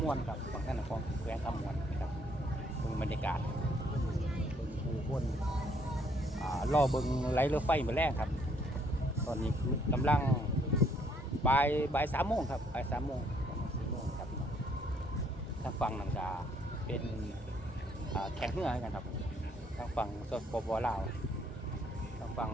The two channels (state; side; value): normal; both; correlation 0.67